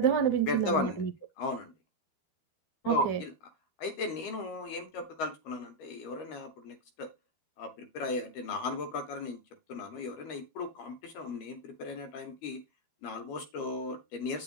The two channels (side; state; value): right; late; 13 ms